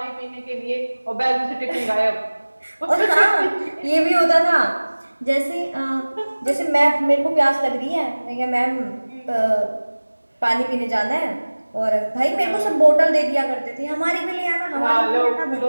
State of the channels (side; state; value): both; inverted; correlation -1.00